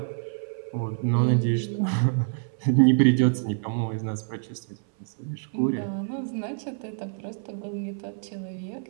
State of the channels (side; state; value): left; silent; 60 dB below the other